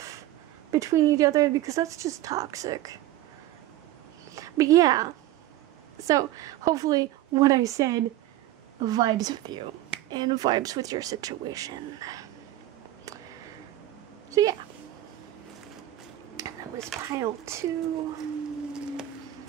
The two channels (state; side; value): quieter; left; 14.6 dB